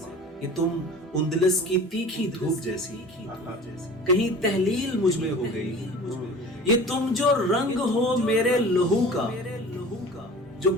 कि तुम उंदलस की तीखी धूप जैसी कहीं तहलील मुझ में हो गई। ये तुम जो रंग हो मेरे लहू का जो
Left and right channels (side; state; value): both; normal; correlation 0.41